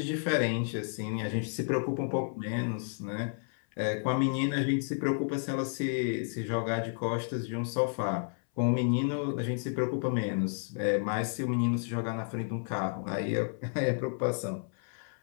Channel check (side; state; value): right; silent; 57 dB below the other